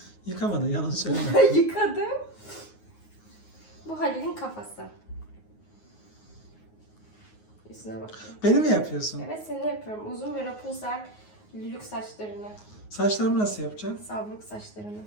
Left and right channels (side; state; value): right; late; 9.5 ms